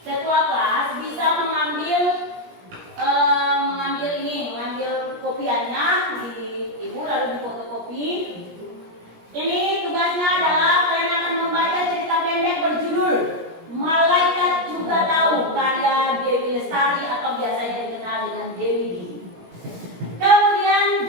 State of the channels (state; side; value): late; left; 17 ms